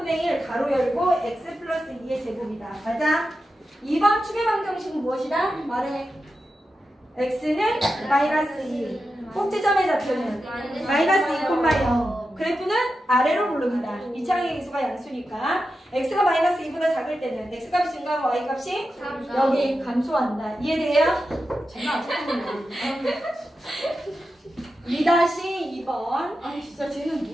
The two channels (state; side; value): normal; both; correlation 0.90